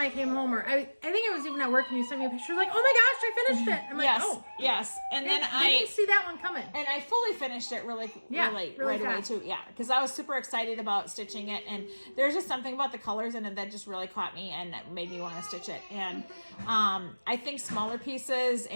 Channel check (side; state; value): both; inverted; correlation -1.00